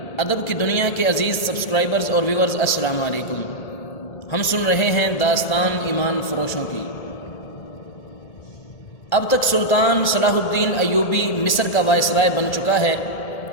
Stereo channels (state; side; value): late; right; 1.8 ms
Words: ادب کی دنیا کے عزیز سبسکرائبرز اور ویورز، السلام علیکم۔ ہم سن رہے ہیں داستان ایمان فروشوں کی۔ اب تک سلطان صلاح الدین ایوبی مصر کا وائسرائے بن چکا ہے۔